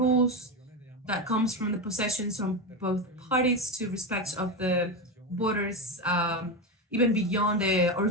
that comes from the possessions from both parties to respect of the borders, even beyond the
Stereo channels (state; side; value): normal; both; correlation 0.15